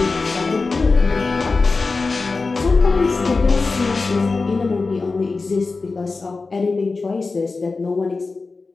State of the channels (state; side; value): quieter; right; 4.0 dB